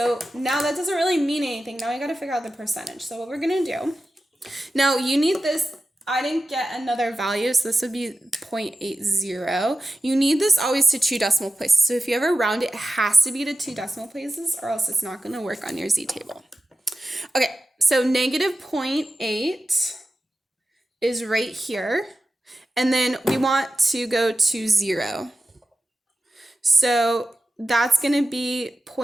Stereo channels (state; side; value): normal; both; correlation 0.93